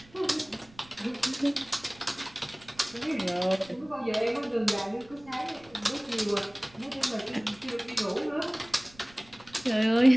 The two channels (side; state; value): right; noise; rumble, 25 dB below the sound